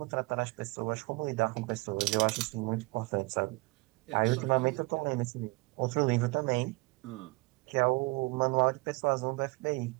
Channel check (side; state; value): left; quieter; 25.9 dB